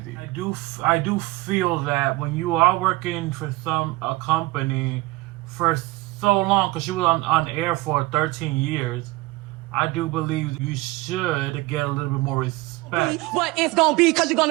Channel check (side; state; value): left; quieter; 20.8 dB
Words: I do feel that when you are working for a company for so long, because she was on air for 13 years, I do believe you should get a little bit more respect. What it's gonna be, because you're